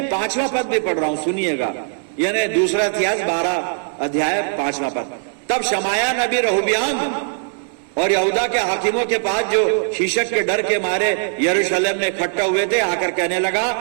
5वां पद भी पढ़ रहा हूं, सुनिएगा, यानी दूसरा इतिहास 12 अध्याय 5वां पद। तब शमाया नबी रहोबियाम और यहूदा के हाकिमों के पास जो शीशक के डर के मारे यरूशलेम में इकट्ठा हुए थे आकर कहने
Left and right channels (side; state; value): left; silent; 66 dB below the other